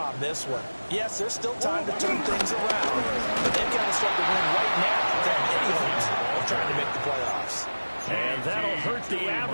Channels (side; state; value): both; inverted; correlation -1.00